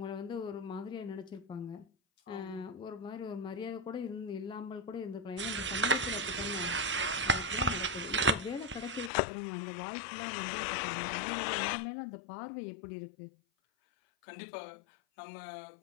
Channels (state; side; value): drops out; right; at 9.1 s